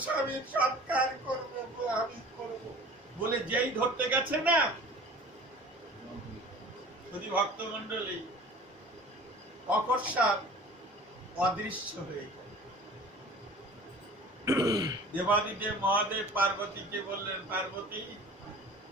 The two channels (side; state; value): both; normal; correlation 0.44